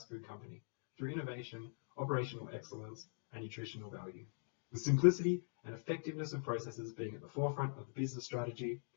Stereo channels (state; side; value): silent; right; digital silence